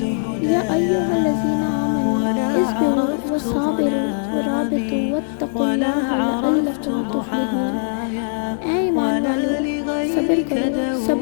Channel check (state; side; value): silent; right; digital silence